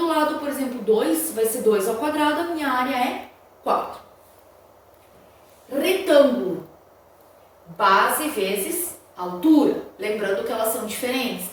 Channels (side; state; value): both; identical; correlation 1.00